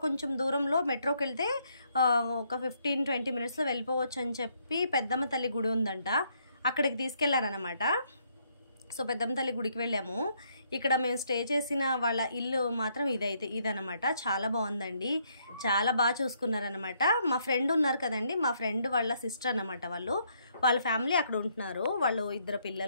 కొంచెం దూరంలో మెట్రోకి వెళ్తే ఒక 15-20 minutesలో వెళ్ళిపోవచ్చు అని చెప్పి పెద్దమ్మ తల్లి గుడి ఉందంట అక్కడికి తీసుకెళ్లారనమాట సో పెద్దమ్మ తల్లి గుడికి వెళ్ళాము ఇక్కడ మేము స్టే చేసిన వాళ్ళ ఇల్లు మాత్రం ఇదనమాట చాలా బాగుందండి చాలా బాగా చూసుకున్నారనమాట మా ఫ్రెండ్ ఉన్నారు కదండి మా ఫ్రెండ్ వాళ్ళ సిస్టర్ అనమాట వాళ్ళ ఫ్యామిలీ అక్కడ ఉంటున్నారు వాళ్ళు 2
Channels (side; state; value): both; inverted; correlation -0.72